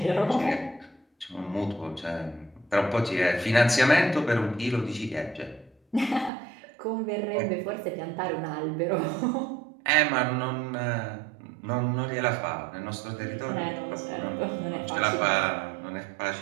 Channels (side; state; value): left; drops out; at 6.3 s